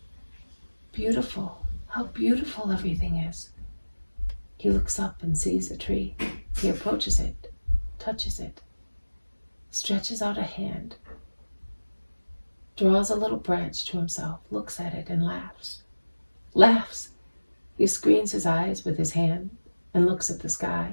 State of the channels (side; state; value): both; inverted; correlation -1.00